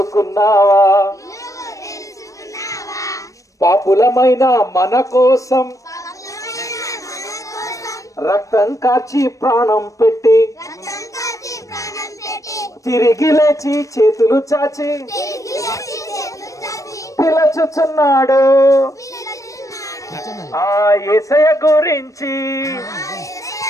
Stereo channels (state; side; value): late; right; 0.16 ms